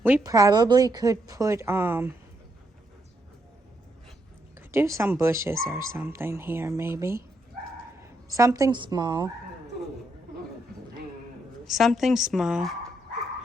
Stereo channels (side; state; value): both; normal; correlation 0.78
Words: We probably could put, do some bushes or something here, maybe. Something small. Something small.